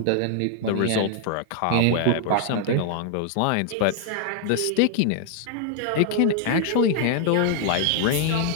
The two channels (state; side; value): different; both; correlation 0.00